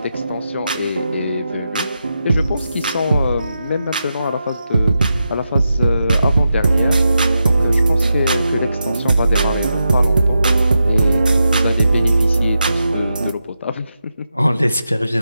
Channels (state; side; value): inverted; both; correlation -0.87